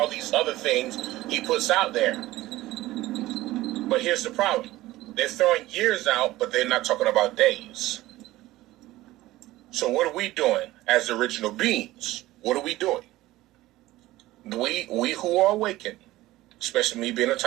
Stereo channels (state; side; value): quieter; left; 17.1 dB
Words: these other things he puts out there. But here's the problem. They're throwing years out, but they're not talking about days. So what are we doing as original beings? What are we doing? We who are awakened, especially me being a